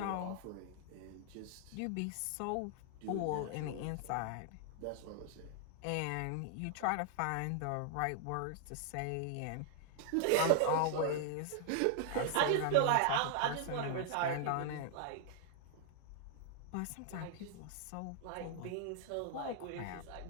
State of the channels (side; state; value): both; different; correlation 0.00